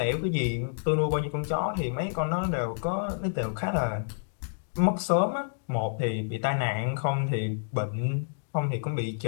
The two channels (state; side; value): silent; right; digital silence